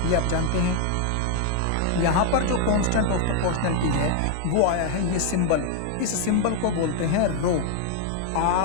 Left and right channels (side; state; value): both; different; correlation 0.00